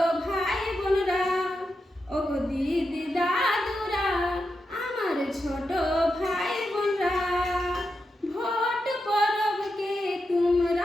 ভাই বোনরা, ও গো দিদি দাদুরা, আমার ছোট ভাই বোনরা, ভোট পরবকে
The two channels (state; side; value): normal; both; correlation 0.87